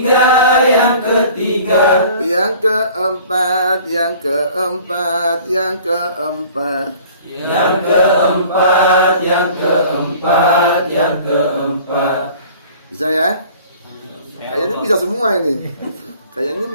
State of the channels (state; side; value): inverted; both; correlation -0.49